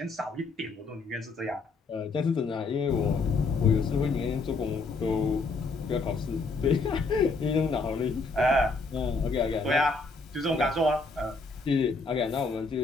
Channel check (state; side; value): quieter; right; 3.8 dB